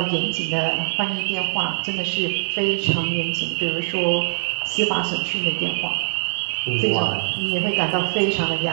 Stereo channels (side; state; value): left; silent; digital silence